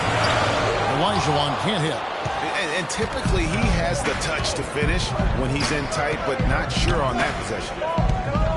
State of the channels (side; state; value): both; identical; correlation 1.00